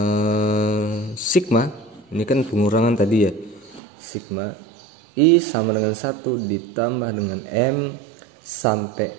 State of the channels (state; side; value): drops out; left; at 3.8 s